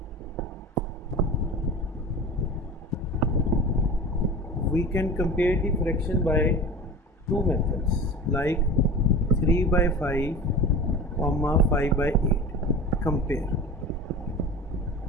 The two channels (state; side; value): normal; both; correlation 0.34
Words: We can compare the fraction by two methods, like 3 by 5, 5 by 8. Compare.